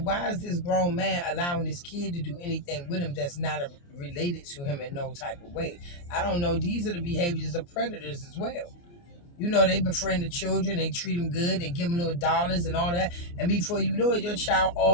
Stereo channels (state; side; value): late; right; 29 ms